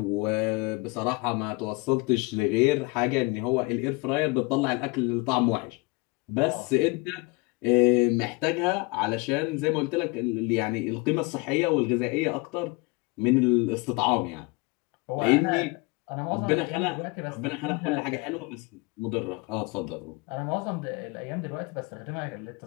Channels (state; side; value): quieter; right; 26.1 dB